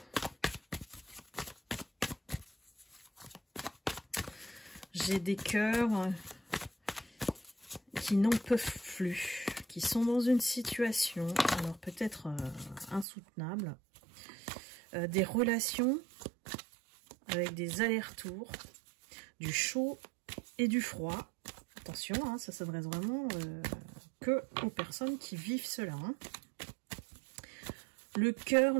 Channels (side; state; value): left; drops out; at 13.1 s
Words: J'ai des cœurs qui n'en peuvent plus, qui sont dans une situation, alors peut-être insoutenable, des relations avec des allers-retours, du chaud et du froid. Attention, hein, ça s'adresse vraiment que aux personnes qui vivent cela. Hein. Le cœur,